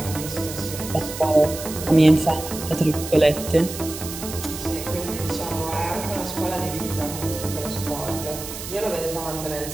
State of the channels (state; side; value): noise; right; hiss, 9 dB below the sound